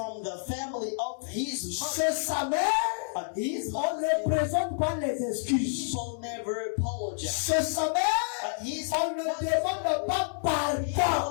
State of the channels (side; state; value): right; silent; 59 dB below the other